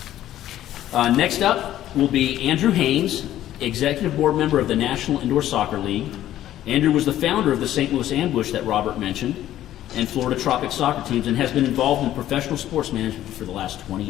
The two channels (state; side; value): quieter; right; 12.8 dB